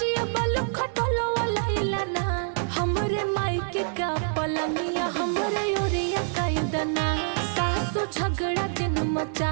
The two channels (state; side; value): silent; left; digital silence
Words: बलु खटोलो लहिला ना हमरे मायके का पलंगिया हमरे ओरिया कैदना सासु झगड़ा दिन